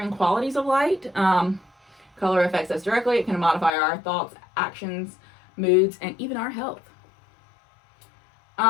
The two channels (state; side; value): drops out; right; at 3.7 s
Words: qualities of light. Color affects us directly. It can modify our thoughts, actions, moods, and even our health.